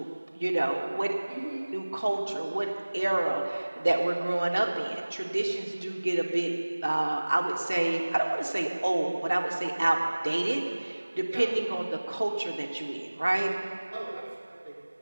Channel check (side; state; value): both; inverted; correlation -1.00